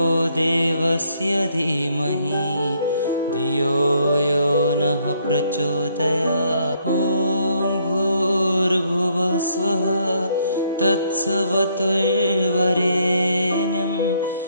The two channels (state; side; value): inverted; both; correlation -0.70